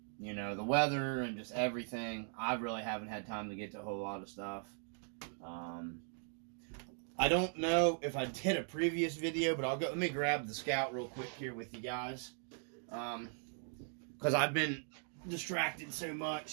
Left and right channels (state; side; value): silent; left; 52 dB below the other